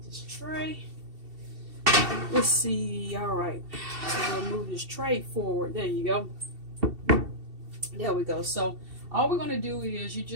this tray. Let's see. Alright, so we'll move this tray forward. There you go. There we go. So all we're going to do is you're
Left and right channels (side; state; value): left; late; 2.7 ms